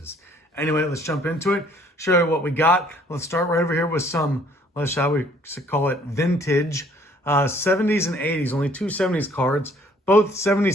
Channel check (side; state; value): both; normal; correlation 0.60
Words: Anyway, let's jump into it, show you what we got. Let's start right over here with some, shall we call it vintage 70s and 80s, only two 70s cards. Both